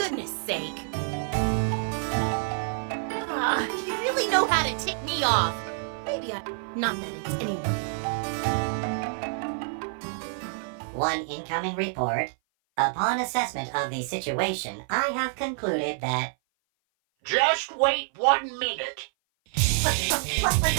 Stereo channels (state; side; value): silent; left; 56 dB below the other